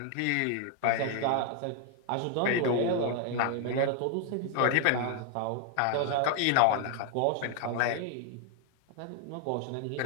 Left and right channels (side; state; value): both; different; correlation 0.00